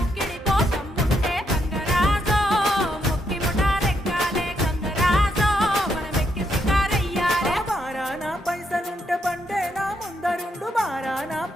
కోసం ఉండే గంగరాజో ముక్కి ముఠాలెక్కాలే గంగరాజో మనమెక్కి షికారయ్యాలే బారానా పైసలుంటే బండే నా ముందరుండు బారానా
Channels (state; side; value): normal; both; correlation 0.78